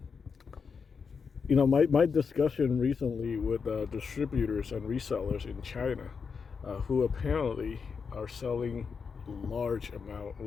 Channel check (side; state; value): right; quieter; 5.7 dB